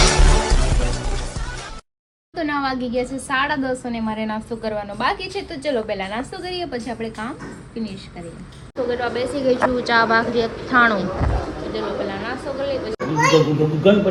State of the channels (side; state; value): both; identical; correlation 1.00